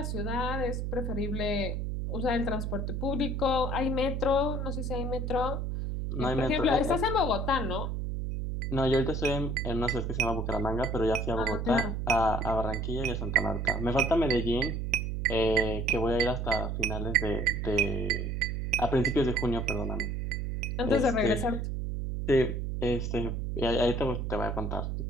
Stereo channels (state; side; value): noise; right; hum, 2 dB below the sound